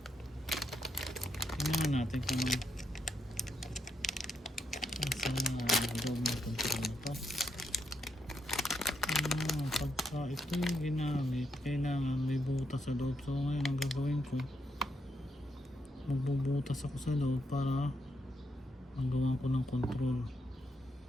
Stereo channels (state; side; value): normal; both; correlation 0.80